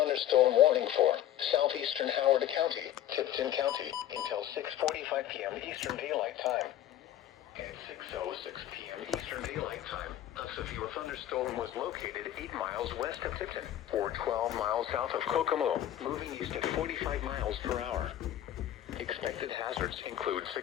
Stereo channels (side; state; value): right; quieter; 12.1 dB